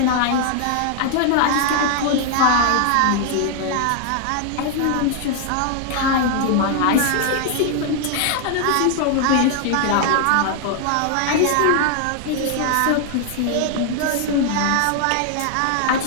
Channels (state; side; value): different; both; correlation 0.00